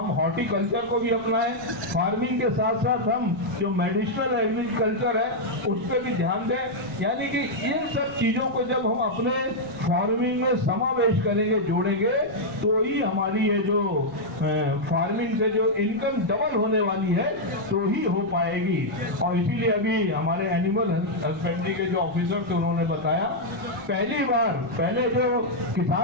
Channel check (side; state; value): left; noise; rumble, 29 dB below the sound